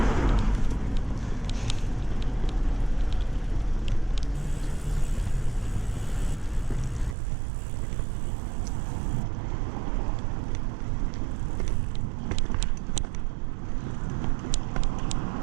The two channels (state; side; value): drops out; left; at 7.2 s